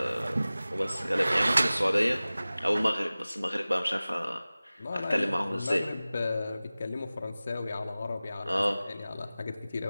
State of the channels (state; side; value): inverted; both; correlation -0.97